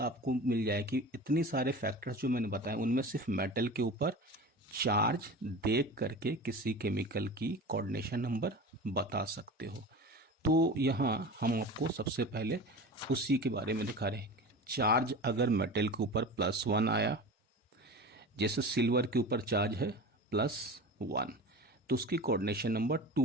आपको मिल जाएगी। इतनी सारे फैक्टर्स जो मैंने बताए उनमें सिर्फ मेटल के ऊपर चार्ज देख करके किसी केमिकल की कोऑर्डिनेशन नंबर बता सकते हो। तो यहाँ हम आपको सबसे पहले उसी के बारे में दिखा रहे हैं। चार्ज अगर मेटल के ऊपर +1 आया, जैसे सिल्वर के ऊपर चार्ज है +1, तो उसकी कोऑर्डिनेशन नंबर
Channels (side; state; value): both; normal; correlation 0.33